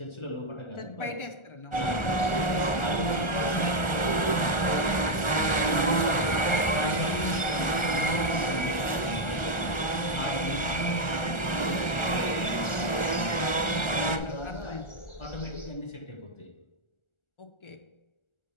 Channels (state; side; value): late; right; 1.4 ms